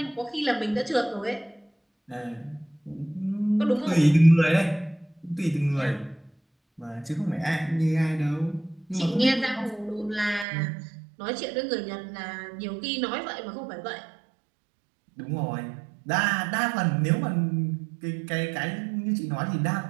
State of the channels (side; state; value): left; drops out; at 10.5 s